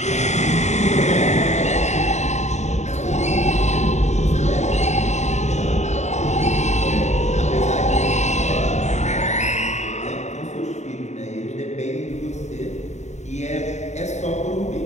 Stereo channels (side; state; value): right; late; 0.33 ms